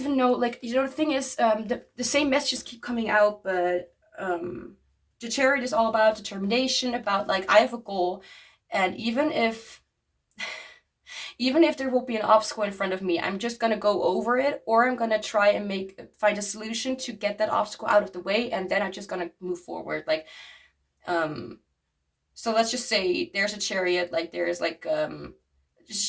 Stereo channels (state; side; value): identical; both; correlation 1.00